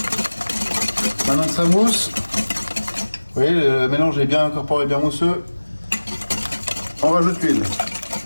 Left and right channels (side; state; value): both; inverted; correlation -1.00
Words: Maintenant que ça mousse, vous voyez, le mélange est bien incorporé, bien mousseux. On rajoute l'huile.